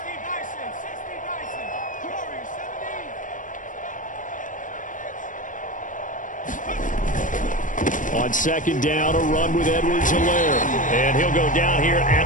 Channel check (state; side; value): late; right; 0.38 ms